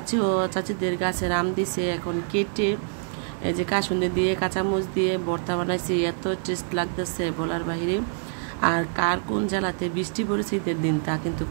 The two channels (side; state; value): left; silent; digital silence